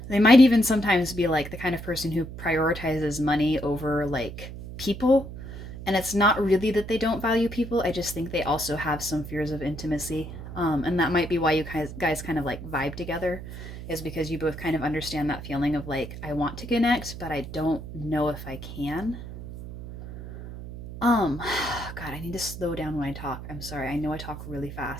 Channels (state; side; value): noise; right; hum, 11 dB below the sound